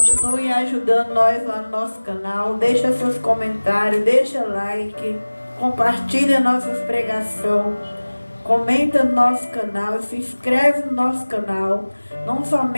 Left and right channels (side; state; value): both; inverted; correlation -1.00